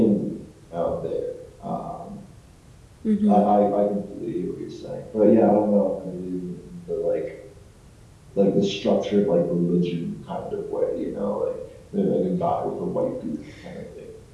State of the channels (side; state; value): both; identical; correlation 1.00